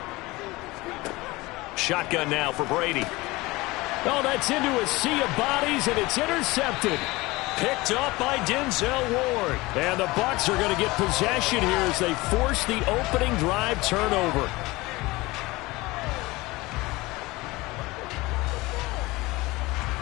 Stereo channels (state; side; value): quieter; right; 21.3 dB